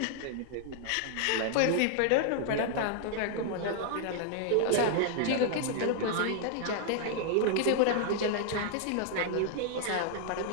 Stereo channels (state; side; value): different; both; correlation 0.00